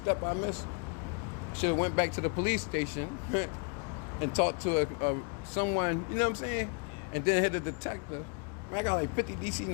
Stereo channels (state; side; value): quieter; right; 37.1 dB